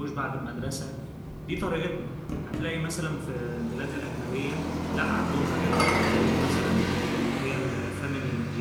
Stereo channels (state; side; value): identical; both; correlation 1.00